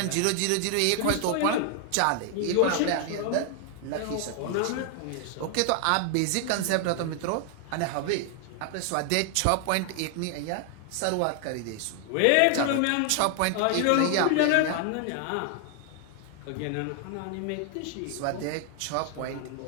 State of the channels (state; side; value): different; both; correlation 0.00